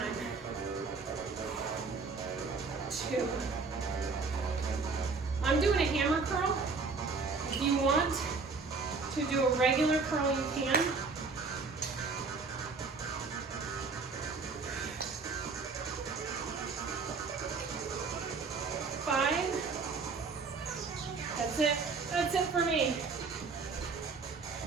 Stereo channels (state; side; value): quieter; left; 4.4 dB